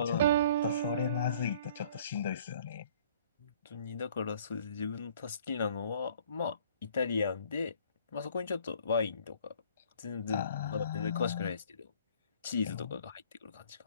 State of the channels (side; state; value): both; inverted; correlation -0.55